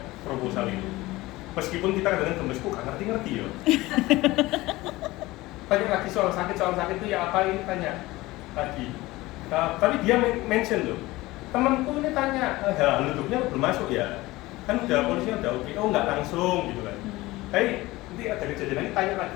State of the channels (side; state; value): right; quieter; 19.4 dB